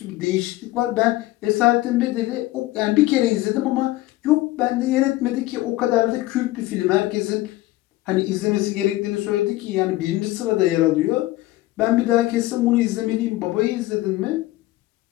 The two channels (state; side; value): quieter; right; 17.4 dB